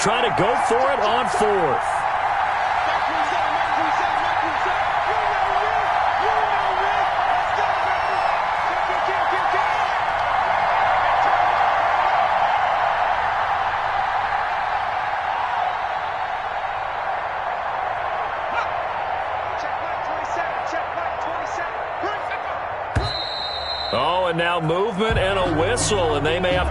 to go for it on 4th. Oh, and now movement and a whistle, and they may have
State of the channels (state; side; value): identical; both; correlation 1.00